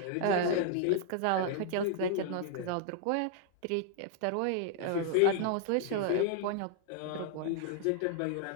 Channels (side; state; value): both; different; correlation 0.00